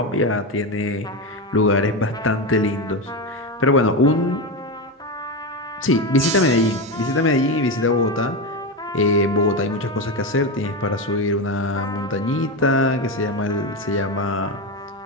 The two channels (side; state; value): both; normal; correlation 0.15